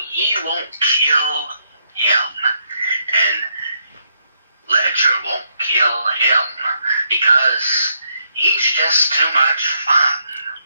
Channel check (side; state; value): both; inverted; correlation -0.76